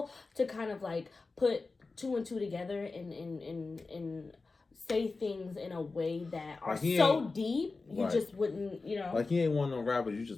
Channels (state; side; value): quieter; right; 3.9 dB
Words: to kind of like put two and two together and say things in a way that are like so deep you just wouldn't, you know. Like he ain't one of them rappers you